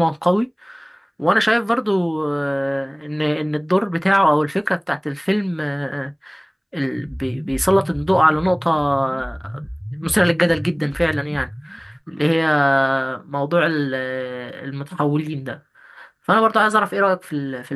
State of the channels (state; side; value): identical; both; correlation 1.00